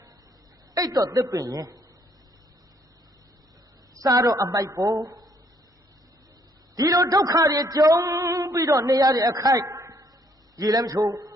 အိတ်တော့သစ်ပင်ရင်စားတော့အမိုက်ပေါ်ဒီလိုဒုက္ခတွေကြုံပြီးတော့နေရတဲ့အခိုက်ရေလည်းမချိုး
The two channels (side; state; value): both; normal; correlation 0.67